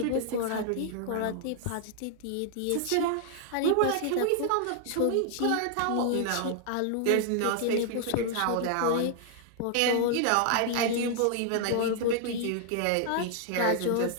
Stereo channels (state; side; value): different; both; correlation 0.00